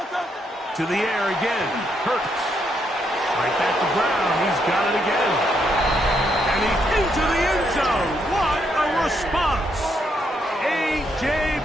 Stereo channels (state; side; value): normal; both; correlation 0.76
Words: To the air again. Hurts. Right back to Brown. He's got it again. And he's into the end zone. What a response. A.J.